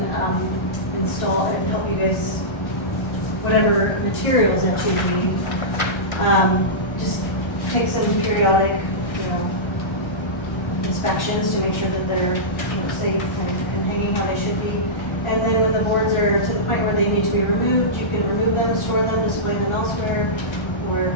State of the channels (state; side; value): late; right; 1.3 ms